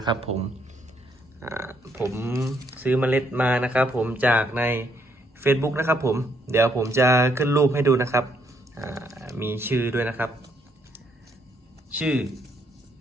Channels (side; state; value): both; normal; correlation 0.72